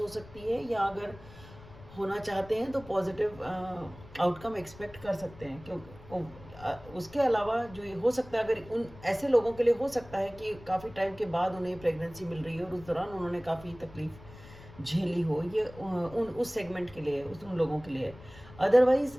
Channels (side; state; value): left; noise; rumble, 19 dB below the sound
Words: हो सकती है, या अगर होना चाहते हैं तो पॉजिटिव आउटकम एक्सपेक्ट कर सकते हैं। क्योंकि उसके अलावा जो ये हो सकता है, अगर उन ऐसे लोगों के लिए हो सकता है कि काफ़ी टाइम के बाद उन्हें प्रेगनेंसी मिल रही है और उस दौरान उन्होंने काफ़ी तकलीफ झेली हो, ये उन उस सेगमेंट के लिए, उन लोगों के लिए। अदरवाइज